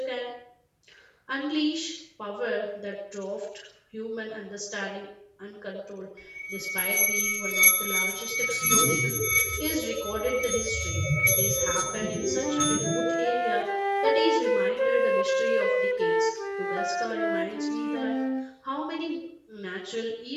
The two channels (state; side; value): identical; both; correlation 1.00